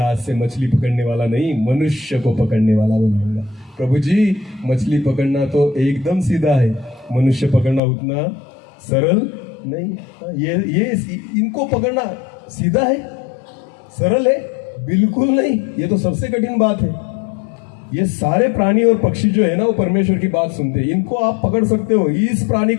से मछली पकड़ने वाला नहीं, मनुष्य को पकड़ने वाला बनाऊंगा। प्रभु जी, मछली पकड़ना तो एकदम सीधा है, मनुष्य पकड़ना उतना सरल नहीं। ये इनको पकड़ना सीधा है, सरल है, बिल्कुल नहीं, ये तो सबसे कठिन बात है। ये सारे प्राणी और पक्षी जो है ना वो परमेश्वर की बात सुनते हैं। इनको आप पकड़ सकते हो, इस प्राणी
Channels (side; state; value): right; drops out; at 7.8 s